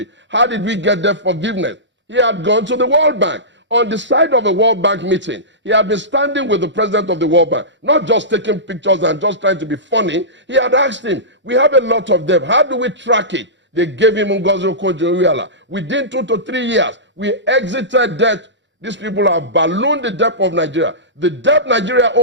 How did we get their forgiveness? He had gone to the World Bank. On the side of a World Bank meeting, he had been standing with the president of the World Bank, not just taking pictures and just trying to be funny. He had asked him, we have a lot of debt. How do we track it? They gave him Ngozi Okonjo-Iweala. Within 2 to 3 years, we exited debt. These people have ballooned the debt of Nigeria. The debt Nigeria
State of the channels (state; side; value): normal; both; correlation -0.19